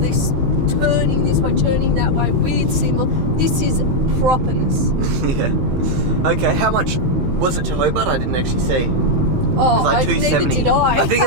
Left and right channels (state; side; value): late; left; 16 ms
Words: turning this way, turning that way, weird symbol. This is properness. Yeah. Okay, how much was it to Hobart? I didn't actually see. Oh, like neither did I. I think it